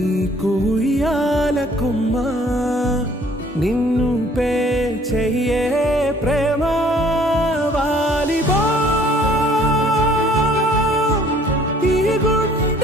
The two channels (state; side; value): normal; both; correlation 0.57